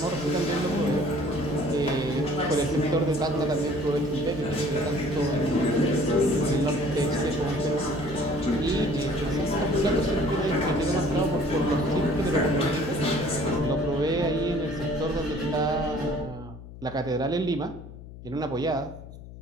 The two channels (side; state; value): left; noise; hum, 15 dB below the sound